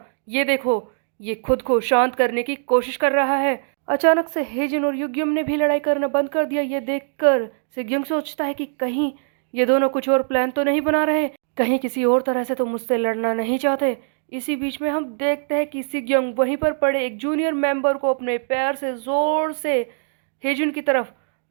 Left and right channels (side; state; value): left; silent; digital silence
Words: ये देखो, ये खुद को शांत करने की कोशिश कर रहा है। अचानक से हेजिन और युग्युम ने भी लड़ाई करना बंद कर दिया। ये देखकर सिग्युम सोचता है कि कहीं ये दोनों कुछ और प्लान तो नहीं बना रहे, कहीं किसी और तरह से तो मुझसे लड़ना नहीं चाहते। इसी बीच में हम देखते हैं कि सिग्योंग वहीं पर पड़े एक जूनियर मेंबर को अपने पैर से जोर से हेजुन की तरफ